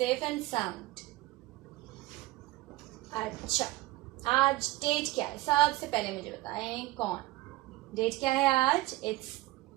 एंड साउंड। अच्छा, आज डेट क्या है? सबसे पहले मुझे बताएं कौन। डेट क्या है आज? इट्स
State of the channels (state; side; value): quieter; left; 18.8 dB